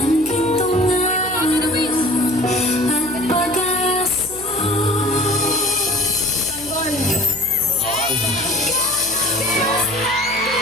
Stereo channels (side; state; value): right; noise; hum, 17 dB below the sound